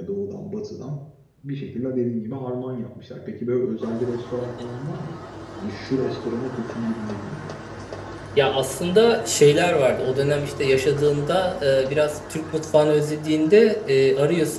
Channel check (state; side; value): identical; both; correlation 1.00